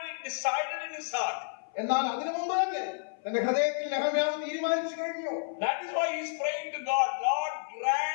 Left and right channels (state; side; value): silent; right; 56 dB below the other